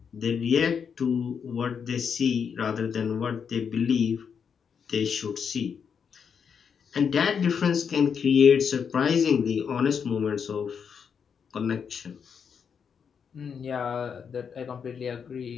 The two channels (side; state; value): right; quieter; 6.8 dB